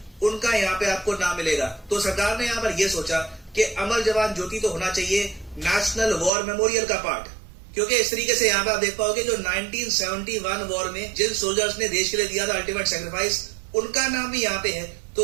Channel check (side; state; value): left; drops out; at 6.3 s